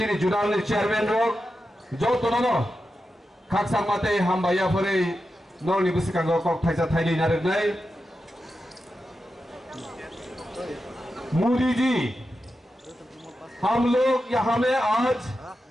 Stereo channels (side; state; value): both; normal; correlation 0.90